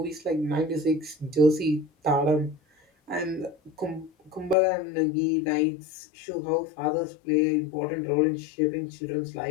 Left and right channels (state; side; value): drops out; right; at 4.5 s